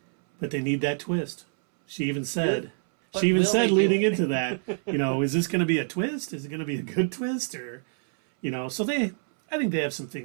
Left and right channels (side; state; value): left; silent; 61 dB below the other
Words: But they need that twist. She even said, But will they do leading it? into that, is this going to be a twist? Is it going to be a good twist? Or, so I think they have some